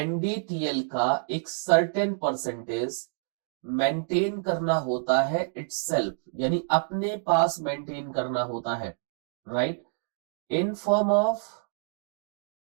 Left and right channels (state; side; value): silent; left; digital silence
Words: का एक सर्टेन परसेंटेज मेंटेन करना होता है इटसेल्फ, यानी अपने पास मेंटेन करना होता है। Right, in form of